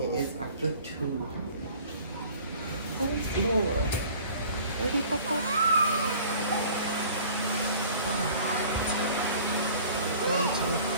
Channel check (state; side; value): inverted; both; correlation -0.48